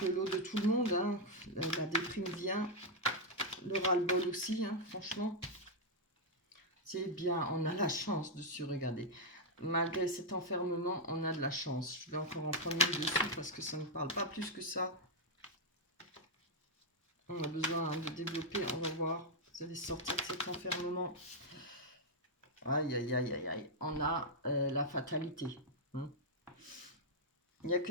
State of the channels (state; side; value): normal; both; correlation -0.02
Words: le lot de tout le monde. Hein. La déprime vient, le ras-le-bol aussi, hein, franchement. C'est bien, on a la chance de se regarder. Malgré cet enfermement, on a de la chance. Je vais encore en prendre une dessus parce que ça ne parle pas plus que ça. On a besoin de développer, on va voir. Vous allez sortir de cet enfermement. Aïe, aïe, aïe, aïe, aïe. On a la fatalité. Hein. Il y a